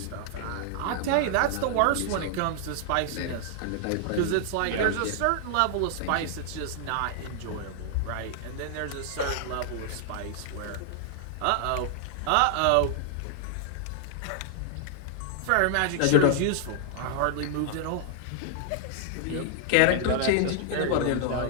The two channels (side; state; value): both; different; correlation 0.00